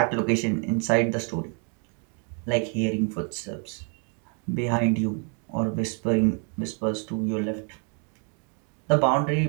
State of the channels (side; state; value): left; quieter; 39.6 dB